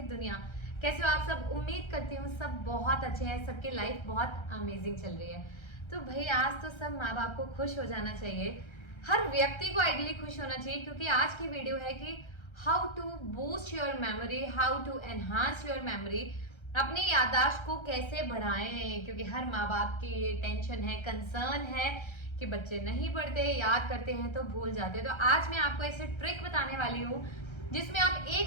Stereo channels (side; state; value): right; late; 1.3 ms